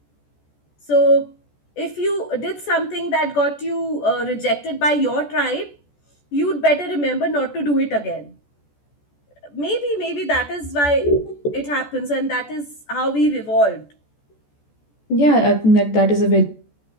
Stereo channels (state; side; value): late; right; 14 ms